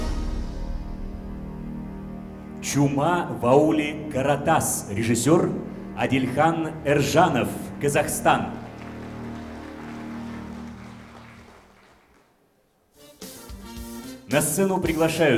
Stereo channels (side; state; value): both; identical; correlation 1.00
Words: «Чума в ауле Каратас», режиссер Адильхан Эржанов, Казахстан. На сцену